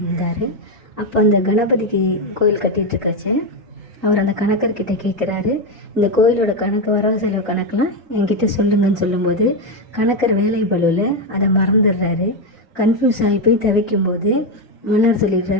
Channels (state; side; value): normal; both; correlation 0.07